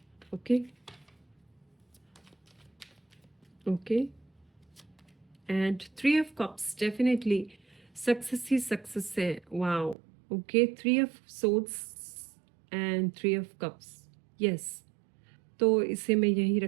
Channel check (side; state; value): left; drops out; at 10.0 s